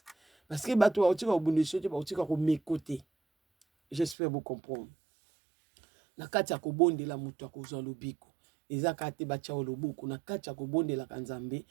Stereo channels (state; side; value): drops out; left; at 4.2 s